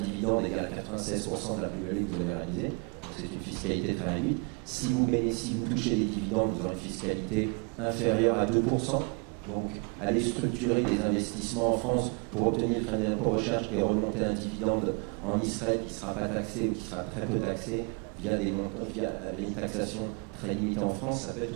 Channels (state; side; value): quieter; left; 33.7 dB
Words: égal à 96% de la plus-value que vous avez réalisée, donc c'est une fiscalité très réduite. Si vous touchez des dividendes, vous aurez une fiscalité inférieure à 2%. Donc, aller structurer des investissements en France pour obtenir le crédit d'impôt recherche et remonter un dividende en Israël qui ne sera pas taxé ou qui sera très peu taxé via une taxation très limitée en France, ça peut